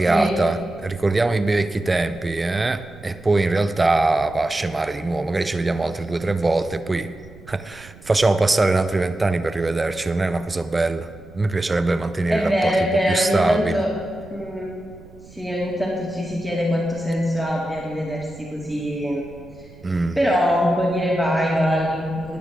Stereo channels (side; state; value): right; noise; rumble, 21 dB below the sound